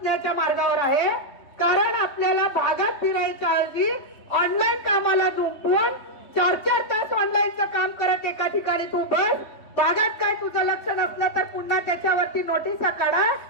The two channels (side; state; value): right; late; 3.2 ms